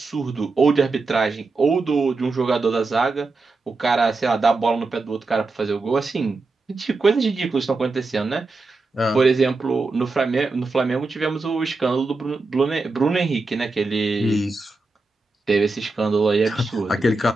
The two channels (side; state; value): left; quieter; 3.5 dB